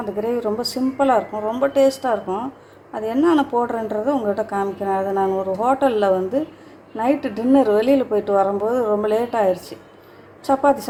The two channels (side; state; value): both; identical; correlation 1.00